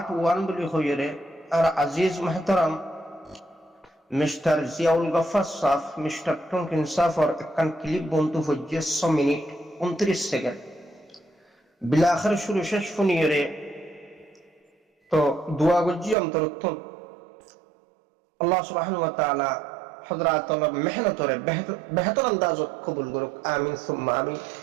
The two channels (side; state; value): left; drops out; at 16.2 s